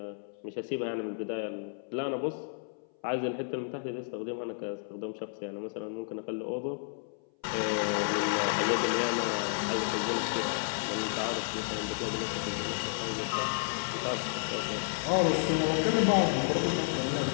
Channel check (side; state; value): right; silent; 57 dB below the other